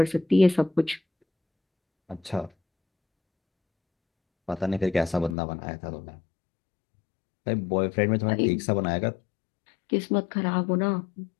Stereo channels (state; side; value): drops out; right; at 5.4 s